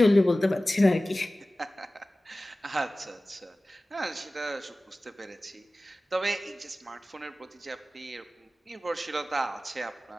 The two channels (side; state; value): both; normal; correlation 0.97